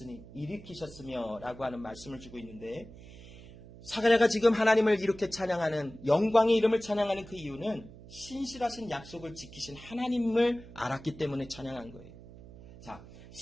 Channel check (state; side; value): noise; right; hum, 18 dB below the sound